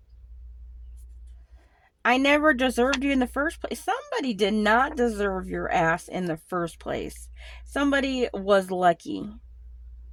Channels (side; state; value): both; identical; correlation 1.00